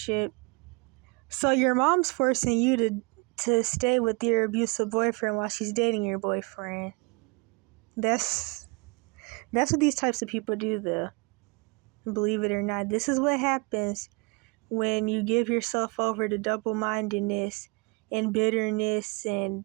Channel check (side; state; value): left; quieter; 29.6 dB